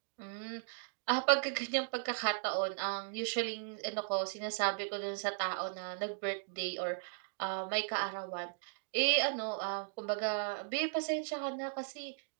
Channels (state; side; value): silent; left; digital silence